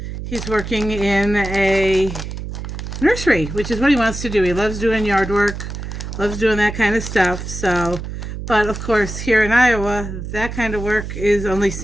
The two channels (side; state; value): right; noise; hum, 7 dB below the sound